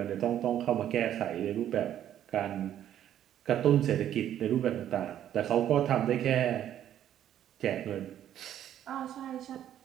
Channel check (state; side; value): quieter; left; 10.9 dB